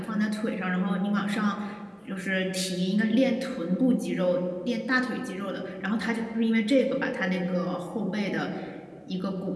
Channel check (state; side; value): identical; both; correlation 1.00